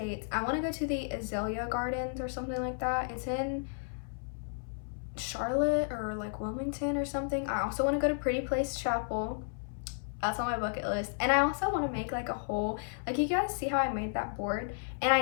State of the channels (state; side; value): silent; right; 56 dB below the other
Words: I want to go to the Azalea Gardens or something like that. It's in Charlotte or like Wilmington or something. I also want to go to Pretty Place Chapel. That's on my bucket list. And I also want to make like a whole, like you guys see how I made that board, and